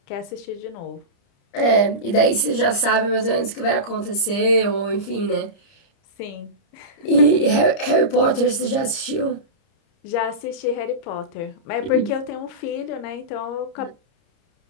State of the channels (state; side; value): late; right; 30 ms